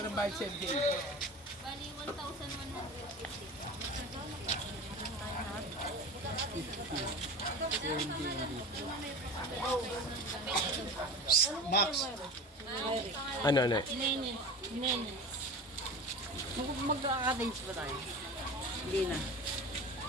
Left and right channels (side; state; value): both; normal; correlation 0.33